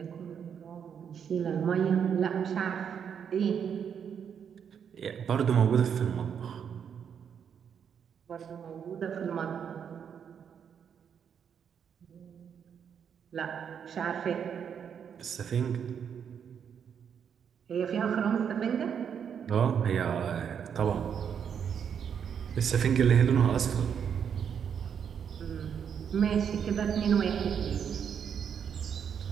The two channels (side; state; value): left; quieter; 7.7 dB